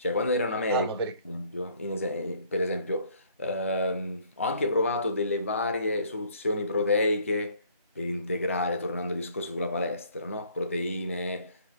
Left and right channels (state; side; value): inverted; both; correlation -0.60